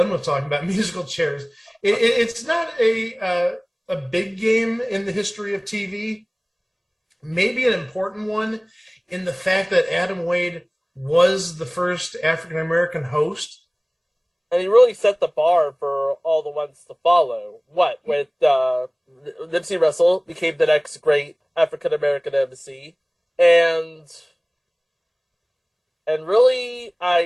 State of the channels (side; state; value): both; identical; correlation 1.00